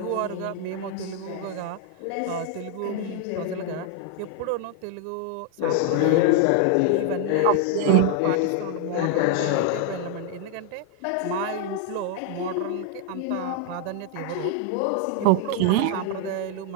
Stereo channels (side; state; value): both; different; correlation 0.00